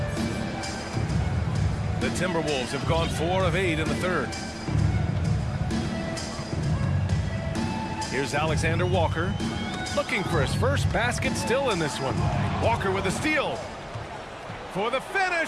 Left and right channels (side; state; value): both; identical; correlation 1.00